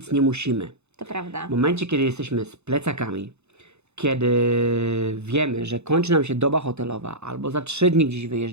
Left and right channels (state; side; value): late; left; 0.81 ms